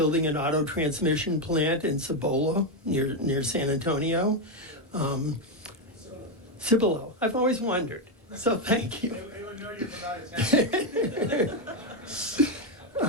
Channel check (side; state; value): both; normal; correlation 0.06